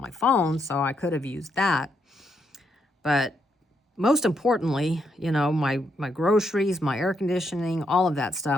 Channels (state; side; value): normal; both; correlation 0.78